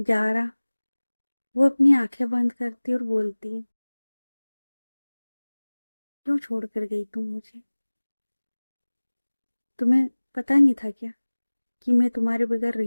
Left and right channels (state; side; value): inverted; both; correlation -1.00